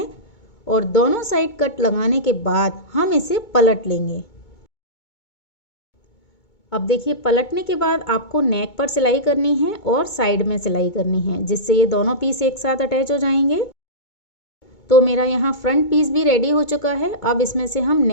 और दोनों साइड कट लगाने के बाद हम इसे पलट लेंगे। अब देखिए, पलटने के बाद आपको नेक पर सिलाई करनी है और साइड में सिलाई करनी है, जिससे ये दोनों पीस एक साथ अटैच हो जाएंगे। तो मेरा यहाँ फ्रंट पीस भी रेडी हो चुका है। अब इसमें से हम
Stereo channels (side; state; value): right; late; 2.2 ms